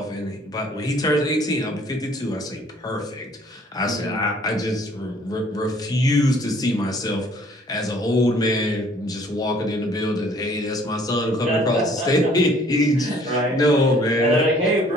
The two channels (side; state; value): both; normal; correlation 0.58